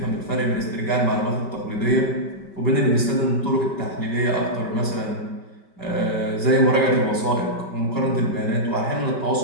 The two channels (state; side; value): late; right; 5.2 ms